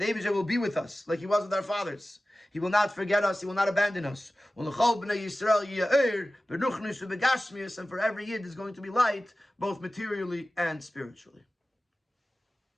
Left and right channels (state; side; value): normal; both; correlation 0.96